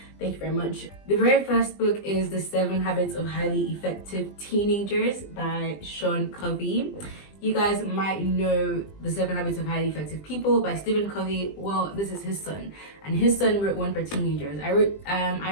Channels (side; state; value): right; late; 20 ms